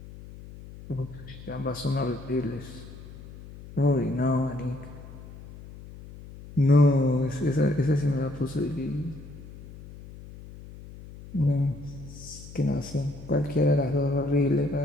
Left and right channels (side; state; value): left; noise; hum, 16 dB below the sound